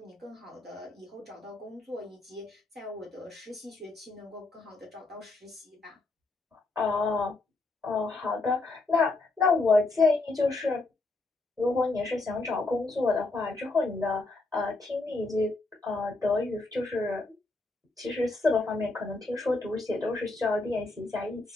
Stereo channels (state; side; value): quieter; right; 3.3 dB